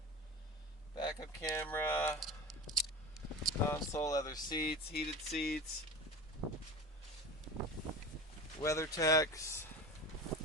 Backup camera. Console, leather seats, heated seats. WeatherTechs.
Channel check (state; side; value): normal; both; correlation 0.31